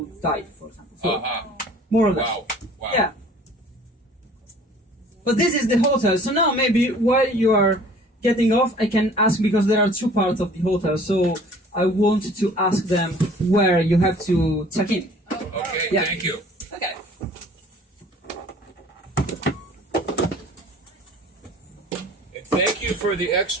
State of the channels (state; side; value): normal; both; correlation 0.50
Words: died, for example. So more or less. Wow. Wow. Yeah. But this is the hotel. So now maybe while you are getting off, I can ask because there are two parts of the hotel. So I want to ask them where you have to check in. Okay. Yeah. Thank you. Okay. And thank you for the